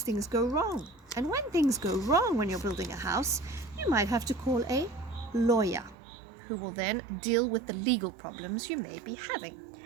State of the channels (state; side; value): drops out; left; at 6.0 s